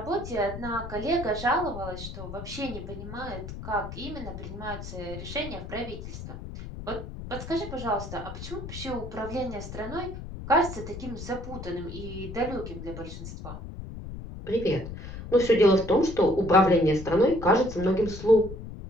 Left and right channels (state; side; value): noise; left; rumble, 10 dB below the sound